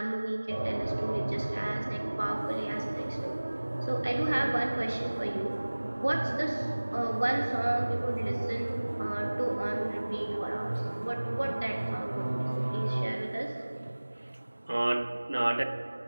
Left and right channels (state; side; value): inverted; both; correlation -1.00